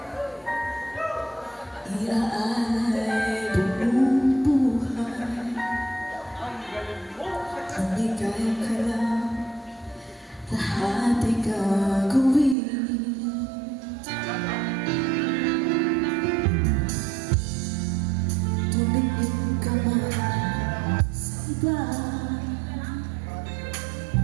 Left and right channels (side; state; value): left; drops out; at 12.6 s